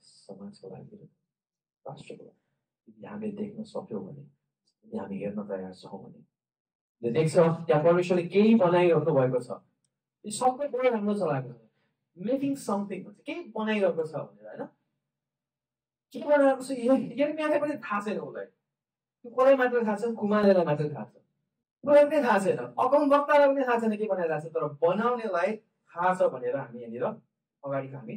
समाजको लागि राष्ट्रको लागि यदि हामीले देख्न सक्यौँ भने यदि हामी हेर्न तयार छौँ भने देख्छ त्यहाँ परमेश्वरले केही बनाइराख्नु भएको छ यो सबै बडो राम्रो चलाएको छ मेकिङ समथिङ भन्छ केही बनाइरहेको छ भनेर होइन के बनाइरहेको छ यिनीहरूले पनि थाहा छैन उसलाई त्यो कसलाई मात्र थाहा छ कुमारलाई मात्र थाहा छ उसलाई पनि थाहा छैन अकाउन्ट वक्तालाई पनि थाहा छैन के बनाइरहेको छ तर बनाउनेलाई थाहा छ भनेर हामी यहाँनिर अगाडिको हामी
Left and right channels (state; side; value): identical; both; correlation 1.00